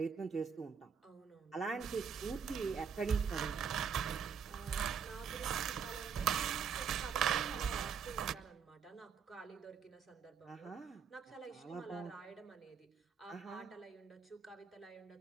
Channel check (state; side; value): quieter; left; 6.8 dB